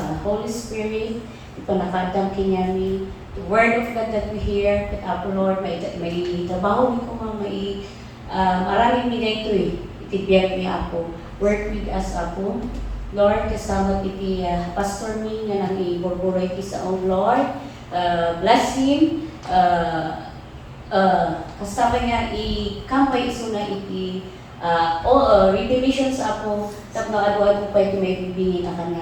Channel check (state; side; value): identical; both; correlation 1.00